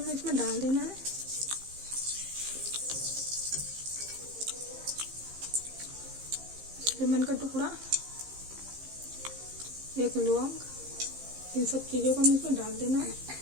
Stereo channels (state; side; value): late; left; 15 ms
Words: इसमें डाल देना है। लेमन का टुकड़ा, 1 लौंग, इन सब चीज़ों को हमें इसमें डाल देना है।